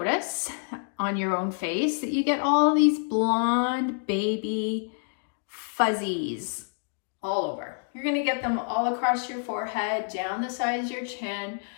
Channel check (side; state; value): right; silent; 60 dB below the other